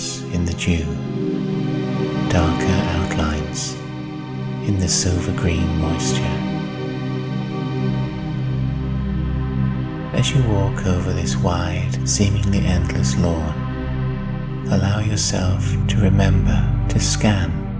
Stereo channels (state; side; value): identical; both; correlation 1.00